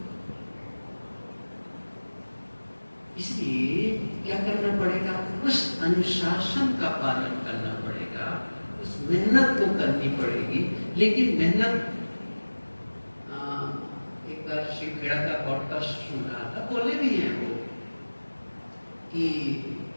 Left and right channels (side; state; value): both; inverted; correlation -1.00